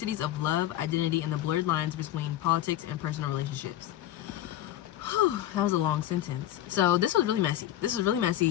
of love, identity, and the blurred lines between politics and personal relationships. That was a long sentence. So this was really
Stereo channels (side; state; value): right; quieter; 13.0 dB